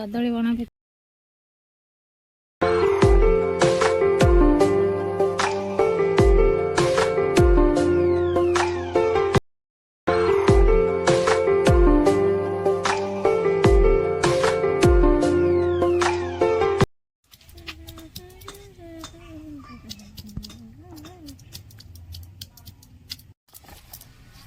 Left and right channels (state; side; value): identical; both; correlation 1.00